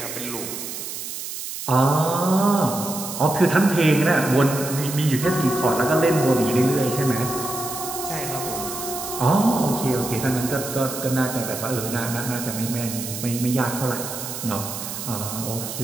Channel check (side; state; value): right; noise; hiss, 7 dB below the sound